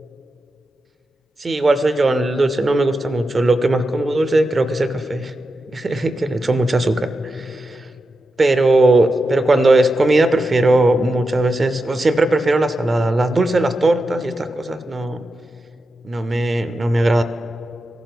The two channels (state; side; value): normal; both; correlation 0.89